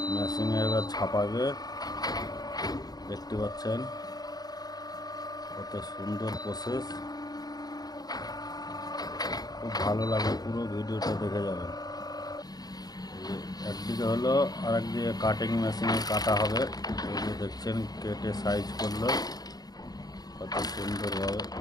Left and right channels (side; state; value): right; late; 0.19 ms